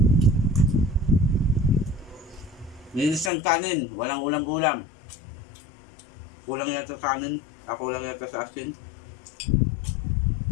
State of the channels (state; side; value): drops out; right; at 3.3 s